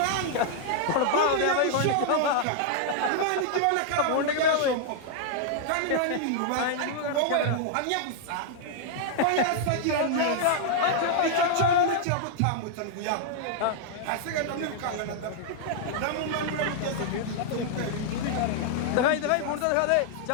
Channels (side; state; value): both; different; correlation -0.01